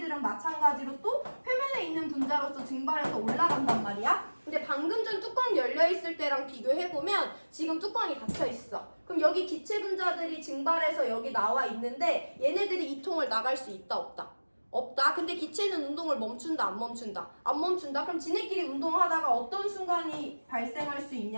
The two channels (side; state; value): both; inverted; correlation -1.00